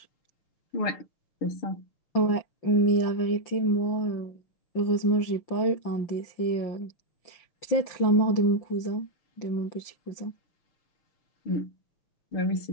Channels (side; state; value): right; late; 5.9 ms